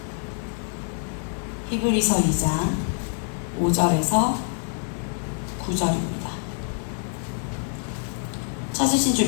히브리서 2장 5절에서 9절입니다. 찾으신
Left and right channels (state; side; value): silent; right; 57 dB below the other